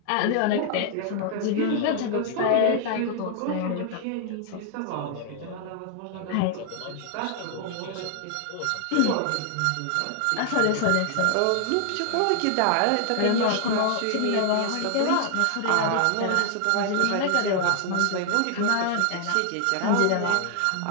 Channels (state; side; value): different; both; correlation 0.00